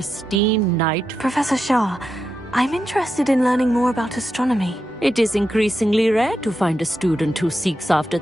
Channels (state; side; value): normal; both; correlation 0.87